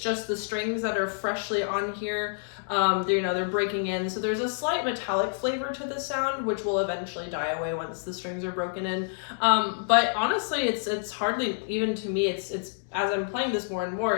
the strings that are freshly on here. They're breaking in. So there's a slight metallic flavor to the sound, which will eventually die away once the strings are broken in. But honestly, it's hardly, even to me, it's as I'm playing this more and more,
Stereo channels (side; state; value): right; silent; digital silence